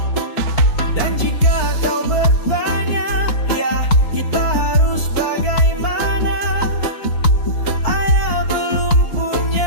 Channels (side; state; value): right; late; 4.5 ms